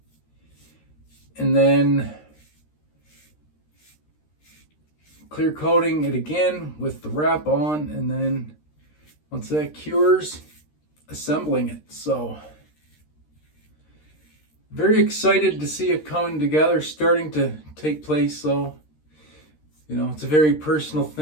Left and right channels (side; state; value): right; late; 13 ms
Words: and then clear coating it again with the wrap on, and then once that cures, assembling it. So very excited to see it coming together, starting to take place. So it's a very personal